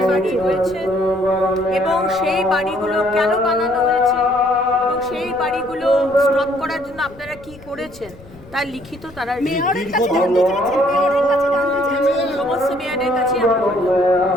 বাড়ি রয়েছে এবং সেই বাড়িগুলো কেন বানানো হয়েছে এবং সেই বাড়িগুলো স্টপ করার জন্য আপনারা কি করেছেন তার লিখিত তারা সমস্ত মেয়রের কাছে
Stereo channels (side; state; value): left; noise; rumble, 21 dB below the sound